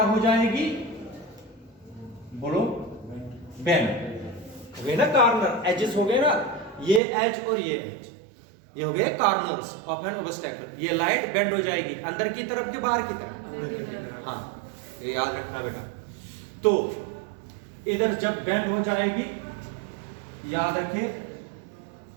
हो जाएगी? बोलो, बेंड हो गए ना, कार्नर एजेस हो गए ना, ये एज और ये एज, ये हो गए कार्नर्स ऑफ एन ओबस्टैकल। ये लाइट बेंड हो जाएगी अंदर की तरफ कि बाहर की तरफ? हाँ, ये याद रखना बेटा। तो इधर जब बेंड हो जाएगी, याद रखिए,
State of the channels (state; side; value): drops out; left; at 7.0 s